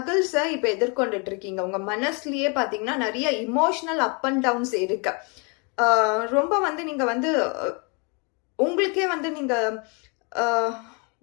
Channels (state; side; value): quieter; right; 33.4 dB